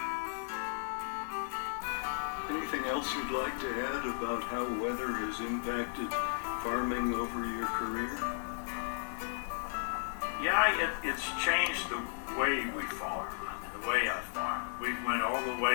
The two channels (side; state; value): right; silent; digital silence